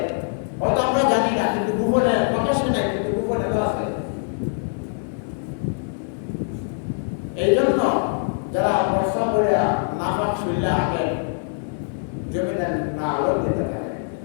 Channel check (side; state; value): right; silent; 63 dB below the other